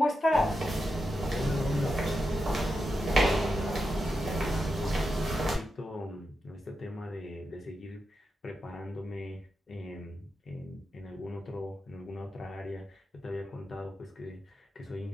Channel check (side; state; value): both; normal; correlation 0.88